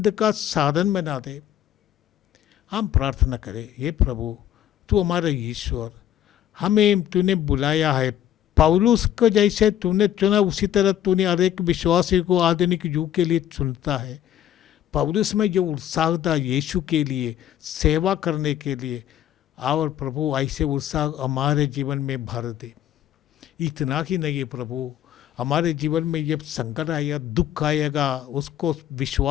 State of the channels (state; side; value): quieter; right; 11.2 dB